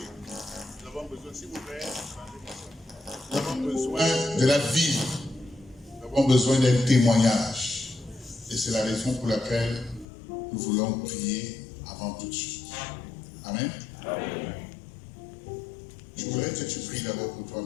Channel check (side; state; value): right; drops out; at 10.1 s